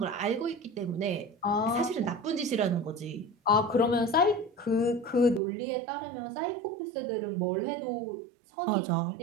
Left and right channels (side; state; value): left; drops out; at 5.4 s